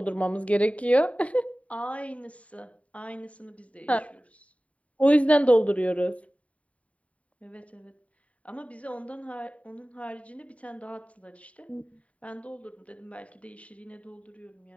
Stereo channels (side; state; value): right; late; 0.066 ms